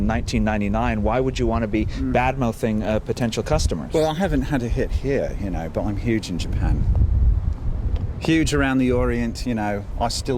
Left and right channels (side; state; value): both; identical; correlation 1.00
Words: why would you want to be bad-mouthing potential customers? Well, I haven't had a hit here, but I'm huge in Japan. Huge around the Orient, I